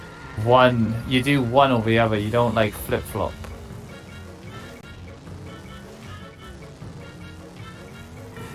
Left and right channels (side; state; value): both; identical; correlation 1.00